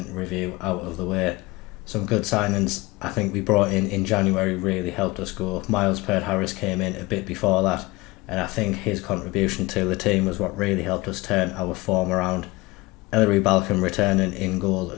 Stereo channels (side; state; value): right; quieter; 22.0 dB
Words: review out of the way. Some good signings I think we brought in January really helped us go. Miles Peart-Harris came in a bit before that, and I think his contribution to the team was what really helped us turn our form around. Ellery Balcom returning in goal